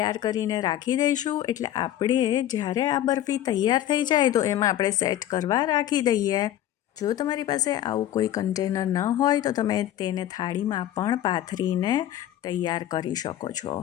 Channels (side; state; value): right; quieter; 12.3 dB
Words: કરીને રાખી દઈશું, એટલે આપણે જ્યારે આ બરફી તૈયાર થઈ જાય તો એમાં આપણે સેટ કરવા રાખી દઈએ. જો તમારી પાસે આવું કોઈ કન્ટેનર ન હોય તો તમે તેને થાળીમાં પણ પાથરીને તૈયાર કરી શકો છો.